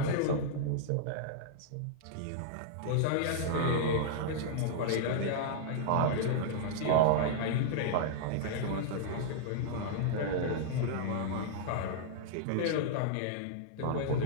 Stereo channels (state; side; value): different; both; correlation -0.01